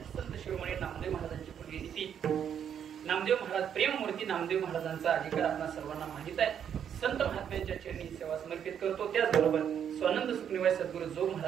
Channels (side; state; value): left; quieter; 8.6 dB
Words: संत शिरोमणी नामदेव महाराजांची पुण्यतिथी, नामदेव महाराज प्रेममूर्ती नामदेव महाराजांचा अधिकार आपल्या सर्वांना माहित आहे. संत महात्म्यांच्या चरणी सेवा समर्पित करतो. त्याचबरोबर स्वानंद सुखनिवाय सद्गुरू जो